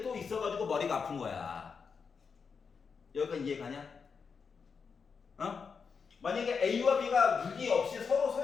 또 있어가지고 머리가 아픈 거야. 여기까지 이해가냐? 만약에 A와 B가 6이 없이 서로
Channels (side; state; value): right; quieter; 5.7 dB